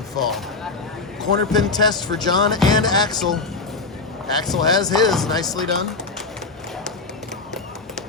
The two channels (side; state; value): right; quieter; 3.9 dB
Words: fall. Corner pin test for John and Axel. Axel has his, nicely done.